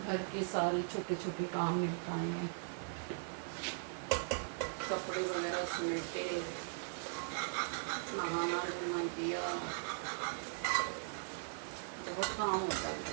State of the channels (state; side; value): silent; left; digital silence